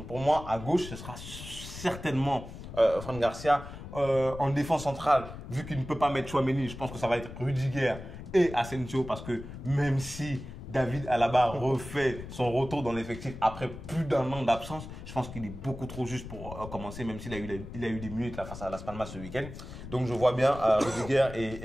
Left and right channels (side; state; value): left; noise; rumble, 11 dB below the sound